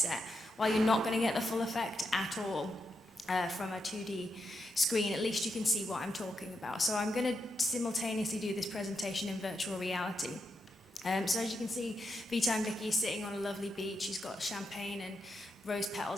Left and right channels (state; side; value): normal; both; correlation 0.84